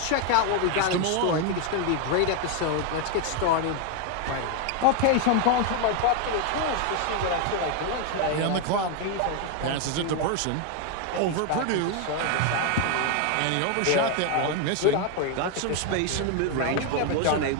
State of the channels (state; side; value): different; both; correlation 0.01